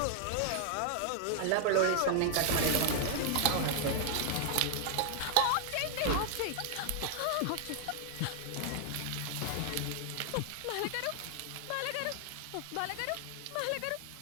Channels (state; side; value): different; both; correlation 0.00